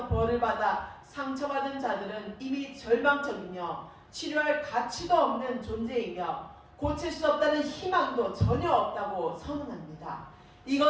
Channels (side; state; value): both; identical; correlation 1.00